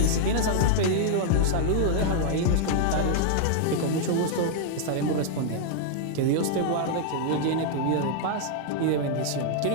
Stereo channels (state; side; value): different; both; correlation -0.01